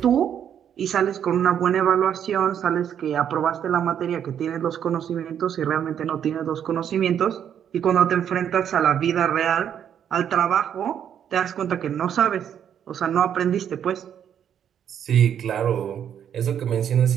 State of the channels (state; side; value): quieter; left; 9.1 dB